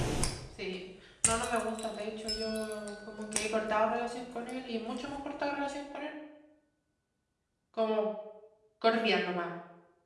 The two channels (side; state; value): both; identical; correlation 1.00